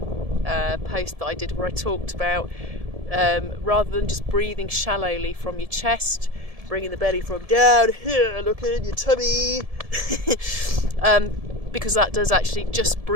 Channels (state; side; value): late; left; 1.7 ms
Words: post that I did where I talked about rather than just breathing shallowly from your chest, bringing the belly from down here, look in your tummy, because that does actually, just